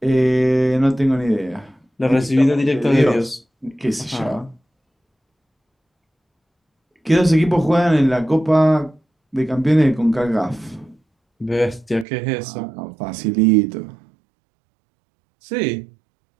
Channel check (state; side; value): drops out; left; at 12.1 s